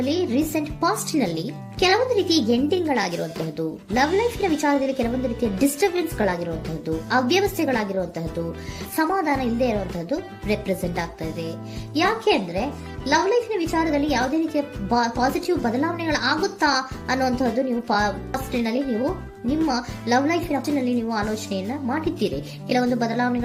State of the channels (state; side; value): identical; both; correlation 1.00